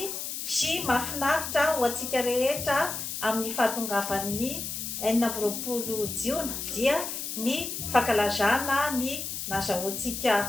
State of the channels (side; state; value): left; noise; hiss, 5 dB below the sound